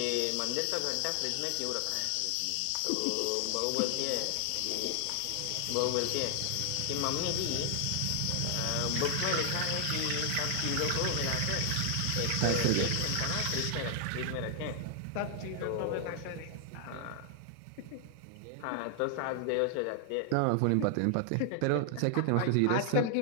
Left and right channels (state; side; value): different; both; correlation 0.00